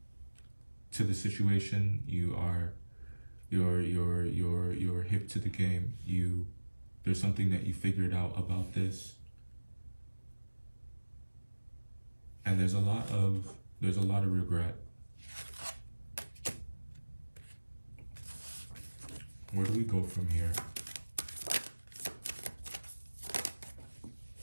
to the situation. You're hip to the game. There's something that you figured out about this. And there's a lot of regret. Where do we go from here?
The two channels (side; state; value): both; inverted; correlation -1.00